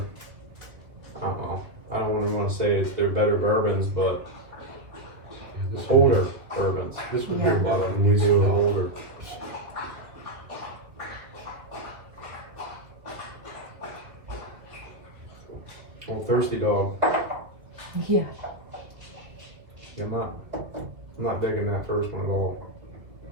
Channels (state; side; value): late; left; 1.8 ms